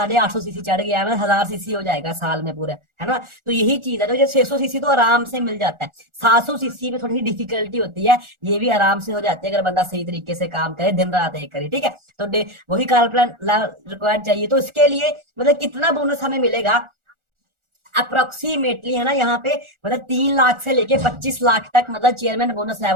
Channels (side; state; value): left; late; 1.4 ms